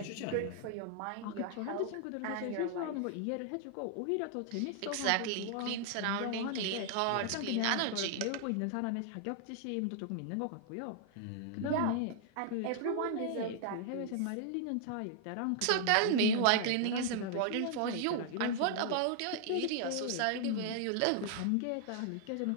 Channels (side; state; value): both; different; correlation -0.01